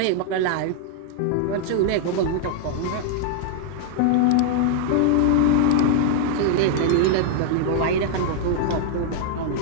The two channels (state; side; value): different; both; correlation -0.01